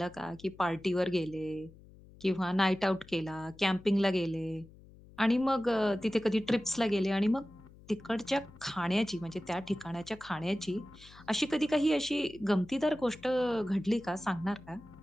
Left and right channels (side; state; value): left; noise; hum, 22 dB below the sound